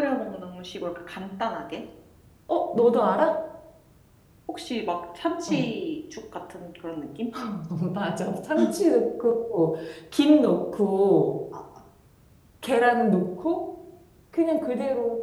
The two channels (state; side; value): identical; both; correlation 1.00